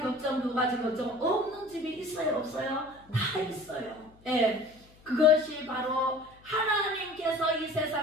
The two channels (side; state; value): left; noise; hum, 27 dB below the sound